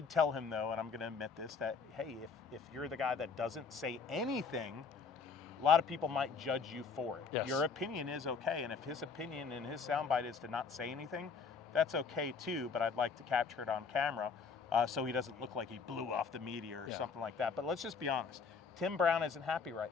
tell him, though, and I'm going to admit this, that, hey, if you're the guy that doesn't say anything, a lot of people might judge you for it. Yes. Your opinion is okay, and if his opinion and his soundbite is to not say anything, that's okay too, but I'd like to capture it on camera so he doesn't look like he blew off the media or something like that. But let's just be honest. Tim Brown isn't happy right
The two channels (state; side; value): quieter; right; 5.3 dB